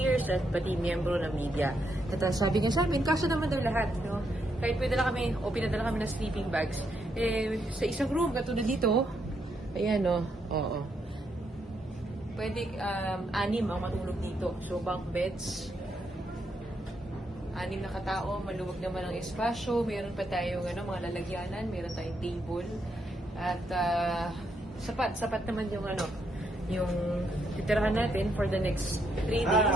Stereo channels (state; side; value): normal; both; correlation 0.78